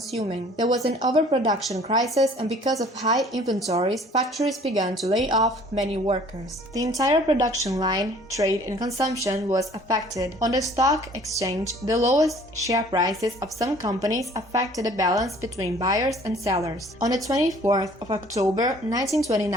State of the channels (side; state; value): both; normal; correlation 0.53